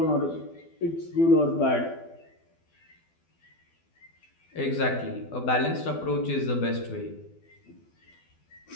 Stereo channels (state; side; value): late; right; 12 ms